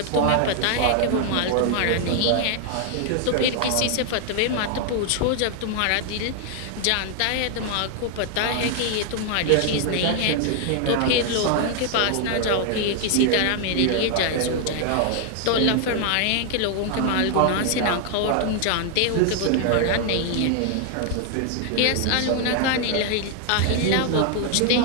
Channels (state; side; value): different; both; correlation 0.00